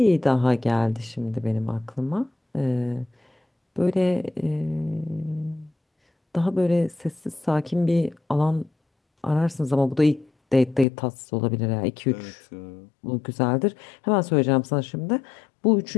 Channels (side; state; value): right; drops out; at 10.9 s